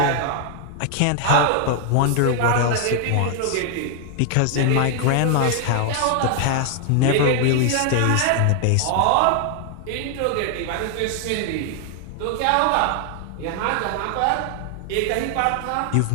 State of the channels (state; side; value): different; both; correlation 0.00